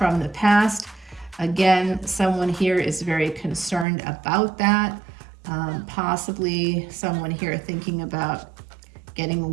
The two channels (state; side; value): drops out; left; at 3.9 s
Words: the past. Again, someone here is very concerned about that. Possibly someone here thinking about getting